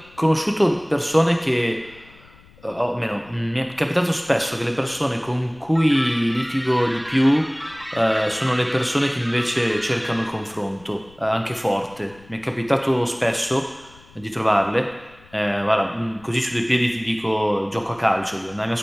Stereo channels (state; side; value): noise; left; rumble, 26 dB below the sound